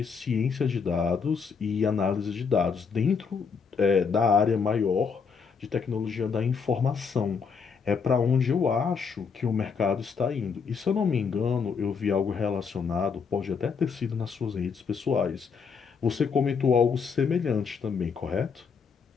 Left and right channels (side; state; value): right; quieter; 5.8 dB